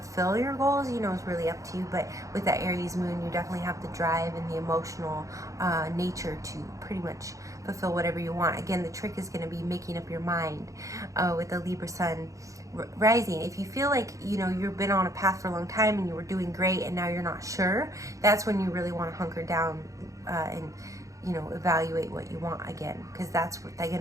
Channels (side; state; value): left; late; 0.16 ms